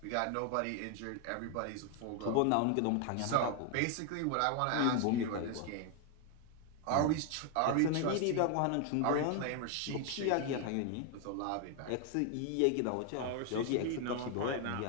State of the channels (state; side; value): different; both; correlation 0.00